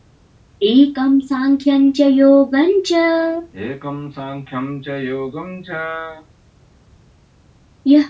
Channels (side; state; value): both; identical; correlation 1.00